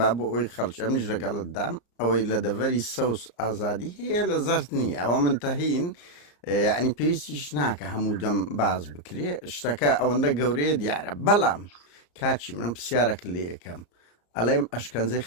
بۆ ئەوی خەڵکی ئەمیش لەگەڵت دام ئەوەی لە دەڤەری سەوس ئازادی هەیە لە زەرد نییە ئەوە منتەهین یعنی پێویستیش ناکە هەموو دەم باز بکرێ شتەکە ئەوەندە گەورەیە دیارە بەڵام کاچی من پرسیارەکە لێ یەکەم ئەڵێم ئەشکەنجەی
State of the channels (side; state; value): right; late; 34 ms